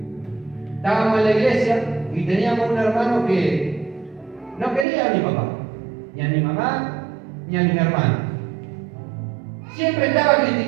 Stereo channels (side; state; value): left; drops out; at 4.9 s